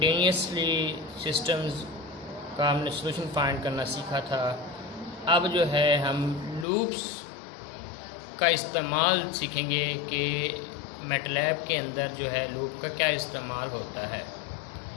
systems का हमने solution find करना सीखा था। अब जो है हम loops का इस्तेमाल सीखेंगे कि MATLAB के अंदर जो है loop का क्या इस्तेमाल होता है।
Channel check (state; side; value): drops out; right; at 6.7 s